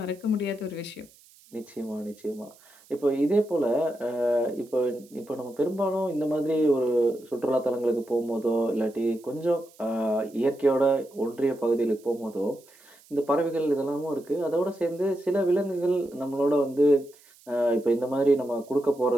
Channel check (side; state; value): right; noise; hiss, 27 dB below the sound